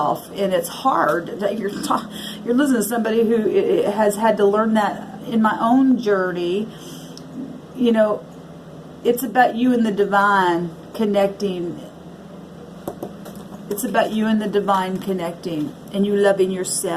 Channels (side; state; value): both; identical; correlation 1.00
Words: and it's hard. You're listening to somebody who has had to learn that in my own journey. You know, it's about you and the divine connecting. It's about you and the divine connecting, and you loving